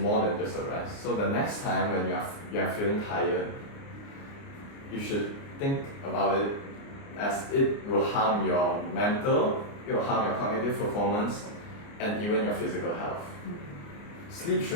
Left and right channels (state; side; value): late; right; 29 ms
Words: than just a rest. So the next time when you are feeling tired, you should think about it as it will harm your mental, it will harm your cognitive performance, and even your physical health. Sleep